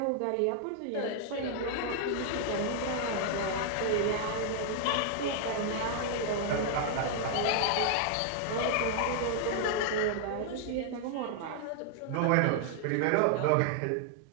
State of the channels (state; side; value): different; both; correlation 0.00